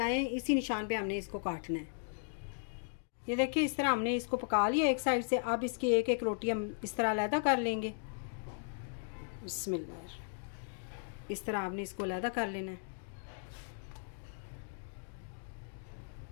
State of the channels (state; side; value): silent; right; digital silence